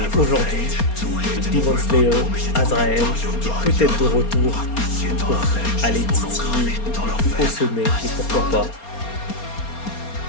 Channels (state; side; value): late; right; 4.3 ms